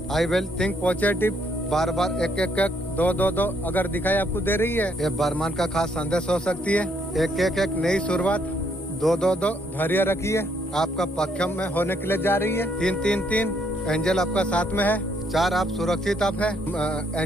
I will think positive. बार बार एक एक एक दो दो दो अगर दिखाई आपको दे रही है, ये बरमान का खास संदेश हो सकती है। एक एक एक नई शुरुआत, दो दो दो धैर्य रखिए, आपका पक्षम में होने के लिए जा रही है। 3 3 3 एंजल आपका साथ में है। 4 आप सुरक्षित आप है,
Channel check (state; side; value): normal; both; correlation 0.71